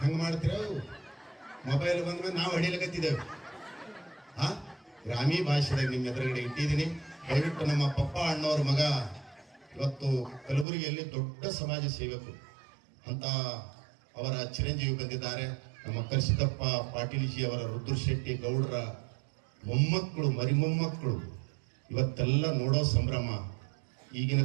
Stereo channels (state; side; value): drops out; left; at 10.7 s